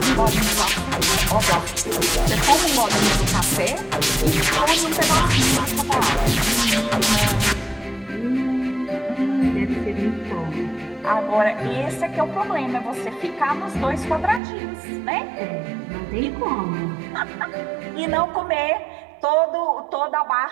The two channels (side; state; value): left; drops out; at 14.4 s